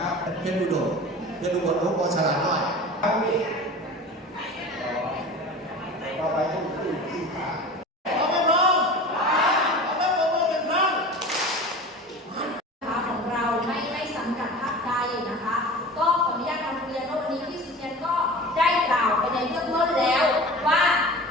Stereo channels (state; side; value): normal; both; correlation 0.36